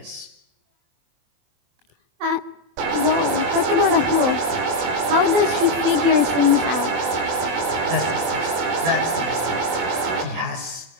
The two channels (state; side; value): late; left; 24 ms